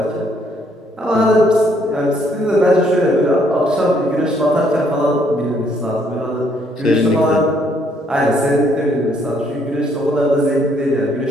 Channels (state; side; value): normal; both; correlation 0.68